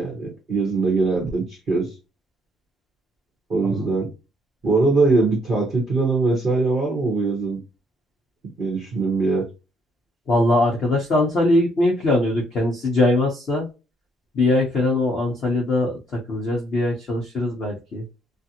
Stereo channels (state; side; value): normal; both; correlation 0.69